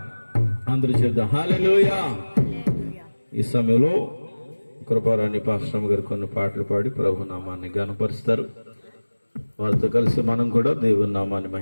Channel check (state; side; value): inverted; both; correlation -1.00